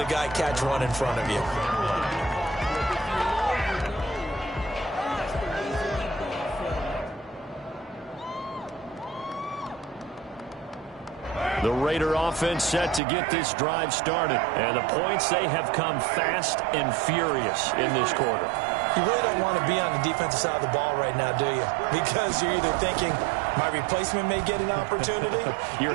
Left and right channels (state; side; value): drops out; left; at 13.0 s